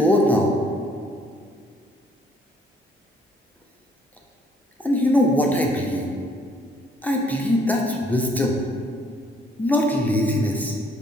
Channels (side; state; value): both; normal; correlation 0.64